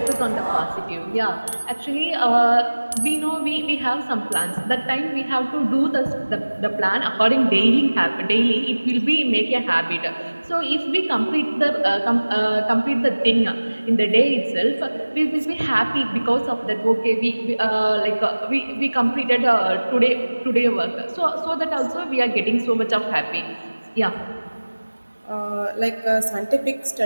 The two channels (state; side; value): inverted; both; correlation -1.00